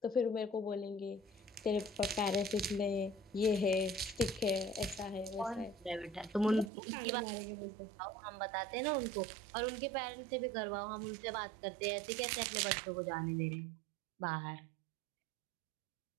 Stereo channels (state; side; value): drops out; left; at 6.7 s